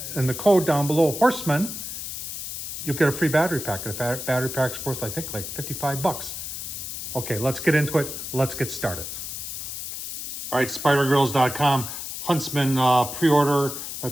and the code down below, Horsman, you'll get a free battery pack. The battery pack's worth, I think, like 55 bucks. Okay, let's get into it. Let's get started. All right, spidergrills.com, Huntsman pre-order.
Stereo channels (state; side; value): noise; left; hiss, 7 dB below the sound